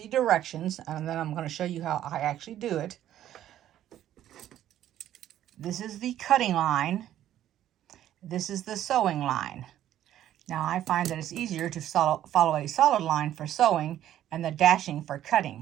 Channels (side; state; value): left; quieter; 12.0 dB